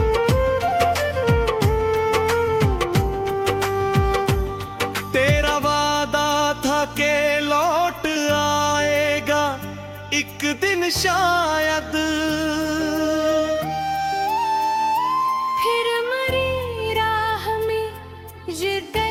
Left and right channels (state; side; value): identical; both; correlation 1.00